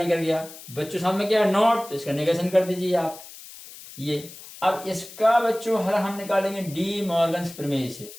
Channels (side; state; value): left; noise; hiss, 16 dB below the sound